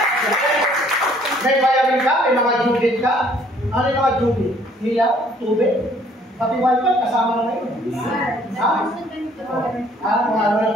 May bayarin ka, may mga judit ka. Ano yung mga judit? Hila, tubig. Pati wifi, kasama na ngayon.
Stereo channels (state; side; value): normal; both; correlation 0.60